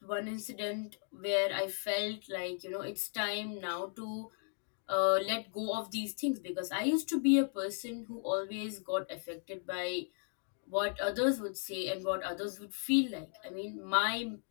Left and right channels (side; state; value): right; silent; 54 dB below the other